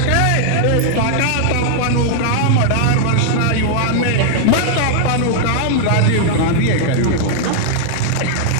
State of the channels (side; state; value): both; different; correlation -0.01